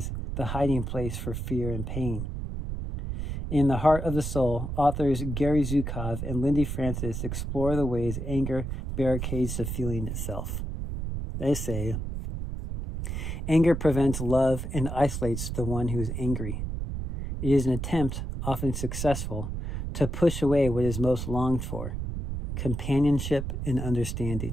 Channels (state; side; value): noise; right; rumble, 4 dB below the sound